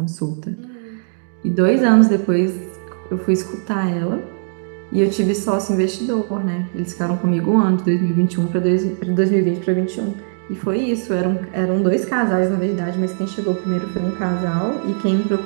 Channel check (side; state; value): left; silent; digital silence